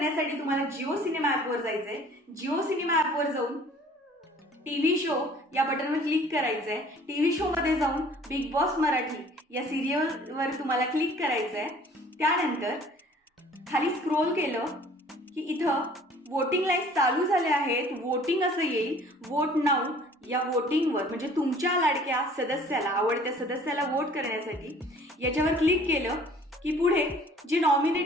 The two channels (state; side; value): normal; both; correlation 0.52